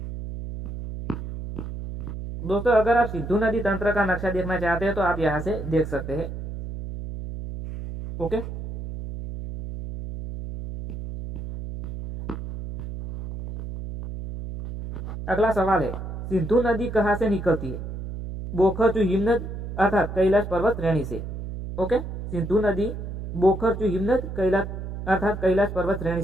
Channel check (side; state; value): right; noise; hum, 7 dB below the sound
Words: दोस्तों, अगर आप सिंधु नदी तंत्र का नक्शा देखना चाहते हैं तो आप यहां से देख सकते हैं। ओके। अगला सवाल है सिंधु नदी कहां से निकलती है। बोखरचू हिमनद अर्थात कैलाश पर्वत श्रेणी से। ओके। सिंधु नदी बोखरचू हिमनद कैलाश अर्थात कैलाश पर्वत श्रेणी